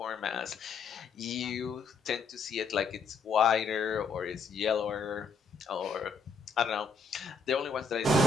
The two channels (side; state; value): right; quieter; 4.7 dB